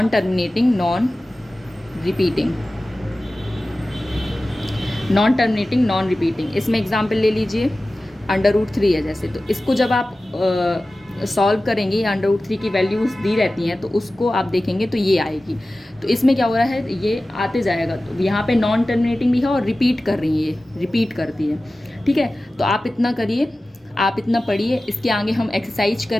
repeating. इसमें एग्जाम्पल ले लीजिए, √3 है जैसे, तो इसको जब आप सॉल्व करेंगे, √3 की वैल्यूज़ दी रहती हैं, तो उसको आप देखेंगे तो ये आएगी। तो इसमें क्या हो रहा है, ये आते जाएगा। तो यहाँ पे नॉन टर्मिनेटिंग भी है और रिपीट कर रही है, ये रिपीट करती है। ठीक है, तो आप इतना करिए, आप इतना पढ़िए। इसके आगे हम एक्सरसाइज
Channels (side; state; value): both; normal; correlation 0.96